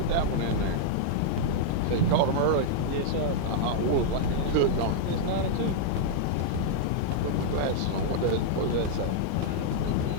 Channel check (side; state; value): both; different; correlation -0.01